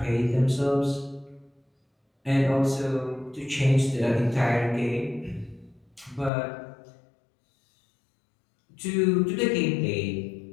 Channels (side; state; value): right; drops out; at 6.3 s